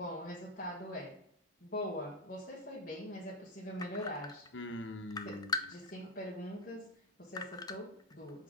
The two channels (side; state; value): both; normal; correlation 0.09